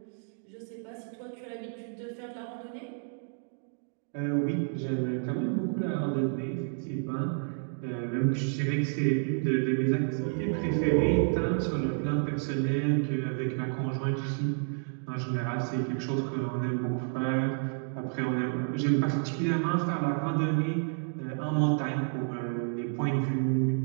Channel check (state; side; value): silent; left; 58 dB below the other